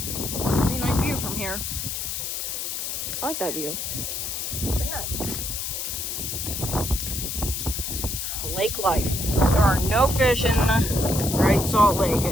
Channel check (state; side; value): noise; left; hiss, 4 dB below the sound